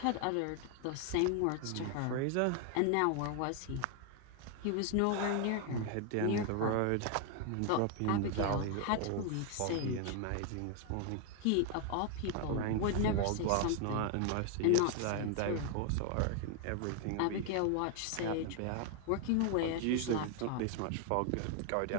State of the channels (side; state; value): both; different; correlation 0.00